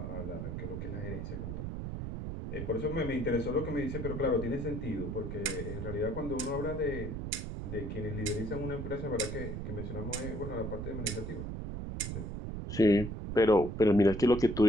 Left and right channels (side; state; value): right; noise; rumble, 5 dB below the sound